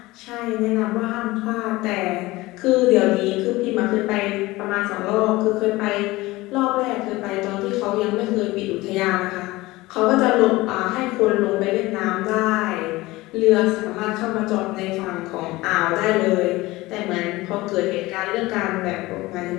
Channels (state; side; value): quieter; right; 19.9 dB